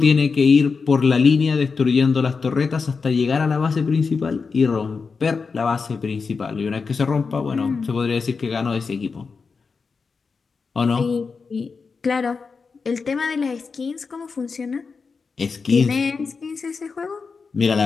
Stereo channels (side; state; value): right; quieter; 4.9 dB